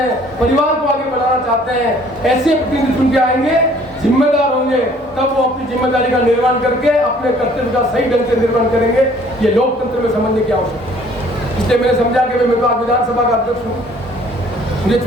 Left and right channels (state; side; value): normal; both; correlation 0.57